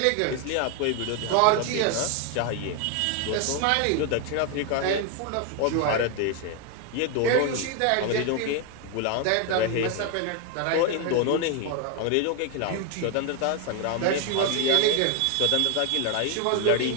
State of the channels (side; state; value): both; different; correlation 0.01